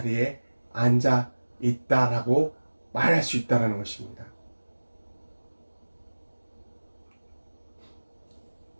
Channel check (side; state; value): both; inverted; correlation -1.00